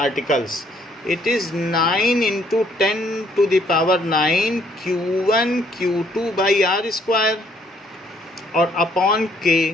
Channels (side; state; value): both; normal; correlation 0.66